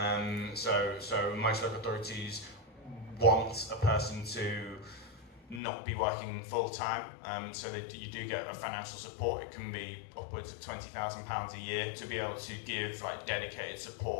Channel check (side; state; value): right; drops out; at 5.6 s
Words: So most local authorities want a person to not be working full time, so that you do get a financial support. It can be upwards of £20,000 a year to be able to give dedicated